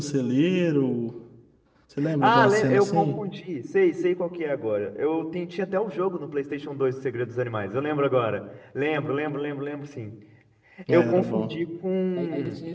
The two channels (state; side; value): identical; both; correlation 1.00